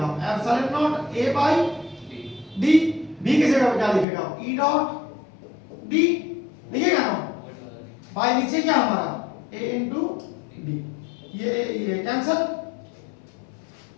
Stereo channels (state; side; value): drops out; right; at 4.0 s